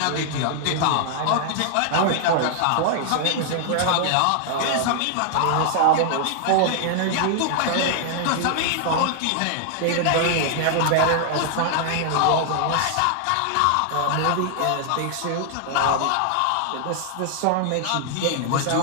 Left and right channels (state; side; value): different; both; correlation 0.00